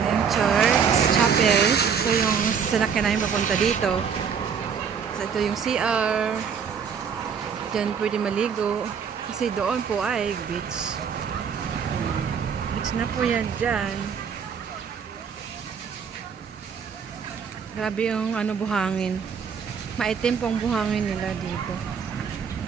church, chapel. So yung sinakyan namin papunta dito. So ito yung CR. Diyan pwede maligo. Kasi doon po ay beach. Beach na po yan dyan. Grabe yung buhangin. Maitim pong buhangin nila dito.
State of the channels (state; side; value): quieter; left; 6.7 dB